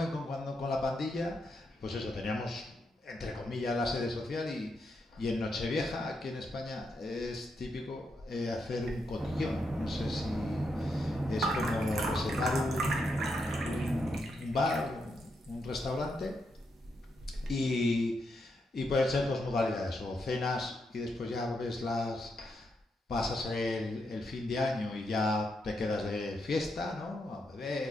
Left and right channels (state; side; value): normal; both; correlation 0.82